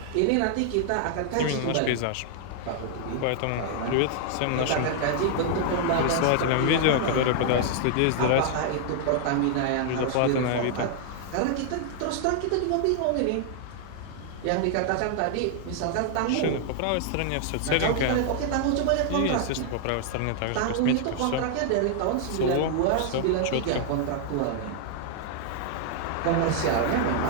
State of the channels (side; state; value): both; different; correlation 0.00